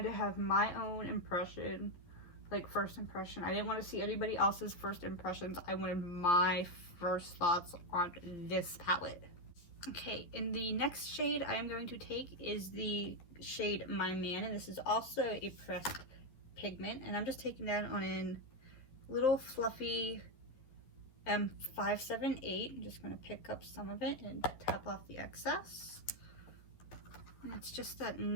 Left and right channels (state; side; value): late; right; 11 ms